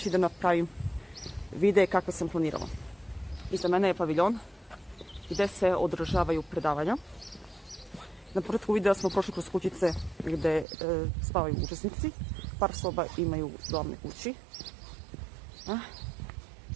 da napravim videe kakve sam planirala. Iza mene je paviljon gdje se održavaju predavanja. Na početku videa smo prošli kroz kućice gdje spavaju učesnici. Par soba imaju u glavnoj kući.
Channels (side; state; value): left; drops out; at 10.7 s